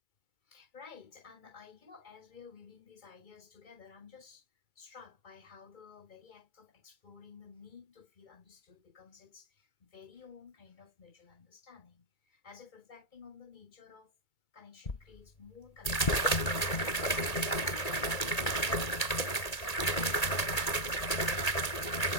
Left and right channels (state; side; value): late; right; 2.3 ms